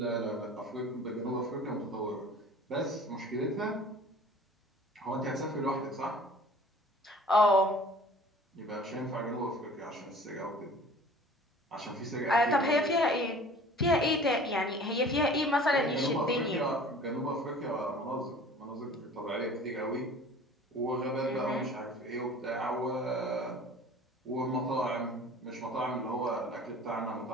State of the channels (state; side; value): normal; both; correlation 0.45